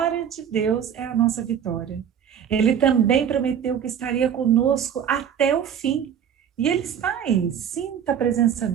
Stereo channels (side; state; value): left; quieter; 8.6 dB